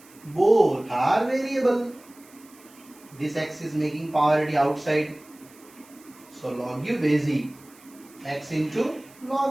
both are variable. This x is making power already outside. So log u base e x into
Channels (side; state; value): right; noise; hiss, 25 dB below the sound